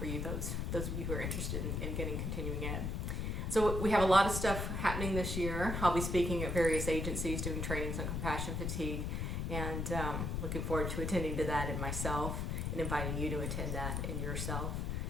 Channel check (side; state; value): left; noise; rumble, 1 dB below the sound